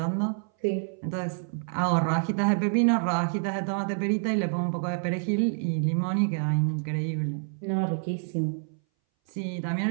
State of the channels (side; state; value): left; silent; 59 dB below the other